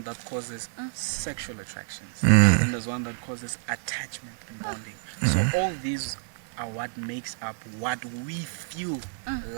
that causes sexual attractions. Then there's one that causes attachment and bonding. So all these are what makes up what we feel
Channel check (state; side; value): silent; left; 59 dB below the other